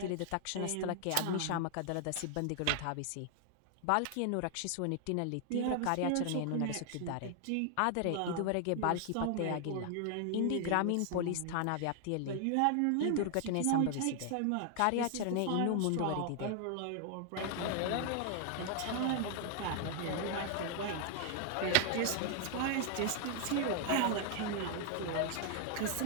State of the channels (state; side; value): different; both; correlation 0.00